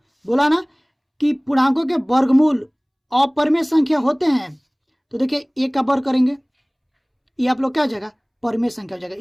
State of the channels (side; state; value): both; identical; correlation 1.00